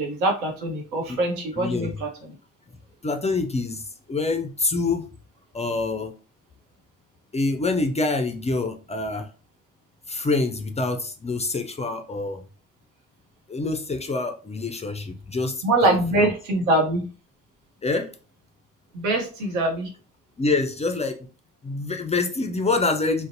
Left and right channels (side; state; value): both; normal; correlation 0.36